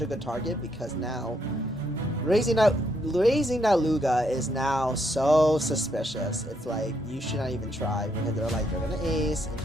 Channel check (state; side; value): normal; both; correlation 0.75